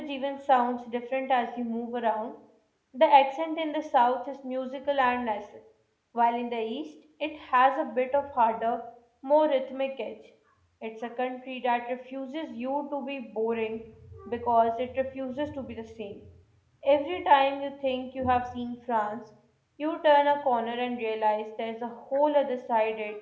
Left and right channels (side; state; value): both; identical; correlation 1.00